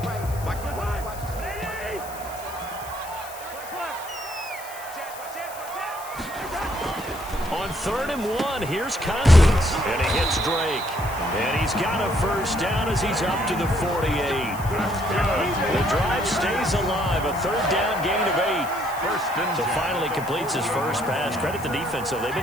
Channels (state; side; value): noise; left; hiss, 16 dB below the sound